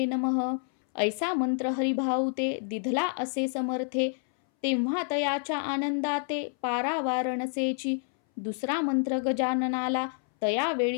नमः. ऐसा मंत्र हरिभाऊ ते दिधला असे समर्थे. तेव्हा तयाच्या आनंदाते पारावार नसेची. दुसरा मंत्र गजाननाला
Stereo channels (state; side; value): silent; right; 59 dB below the other